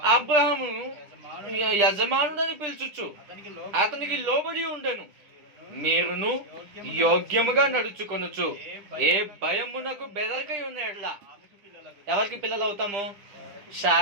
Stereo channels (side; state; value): left; late; 10 ms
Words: అబ్రహాము యజమానుడని పిలుచుచు అతనికి లోబడి ఉండెను. మీరును యోగ్యముగా నడుచుకొనుచు ఏ భయమునకు బెదరకై ఉన్నాడులా. ఎవరికి పిల్లలు అవుతాము?